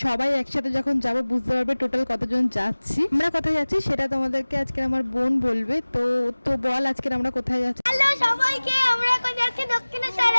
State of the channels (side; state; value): both; inverted; correlation -1.00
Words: সবাই একসাথে যখন যাব বুঝতে পারবে টোটাল কতজন যাচ্ছি। আমরা কোথায় যাচ্ছি সেটা তোমাদেরকে আজকে আমার বোন বলবে। তো তো বল আজকে আমরা কোথায় যাচ্ছি। হ্যালো সবাইকে, আমরা এখন যাচ্ছি